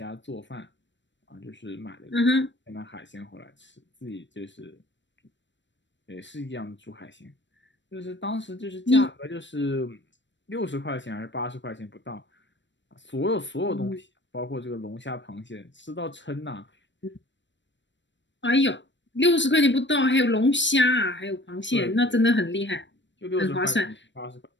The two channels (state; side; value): late; right; 0.53 ms